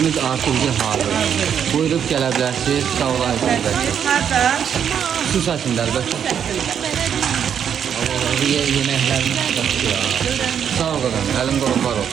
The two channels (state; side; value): quieter; left; 8.3 dB